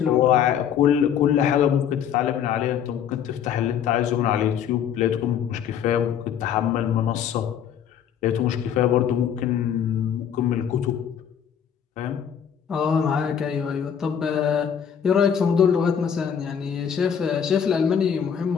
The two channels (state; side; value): quieter; right; 8.4 dB